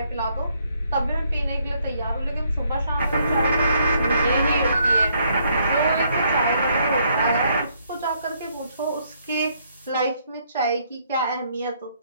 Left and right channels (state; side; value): inverted; both; correlation -0.71